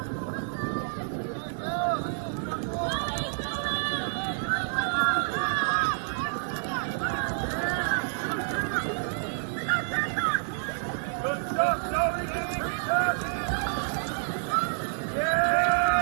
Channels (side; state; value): left; silent; 59 dB below the other